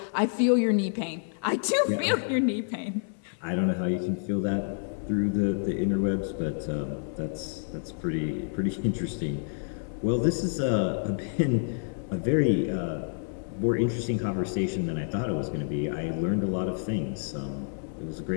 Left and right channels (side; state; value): right; silent; 59 dB below the other